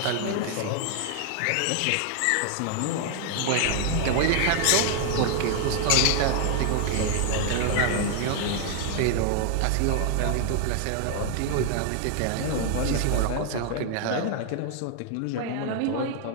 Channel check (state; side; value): different; both; correlation 0.00